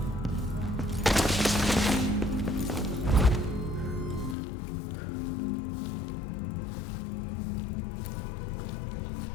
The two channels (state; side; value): drops out; right; at 4.4 s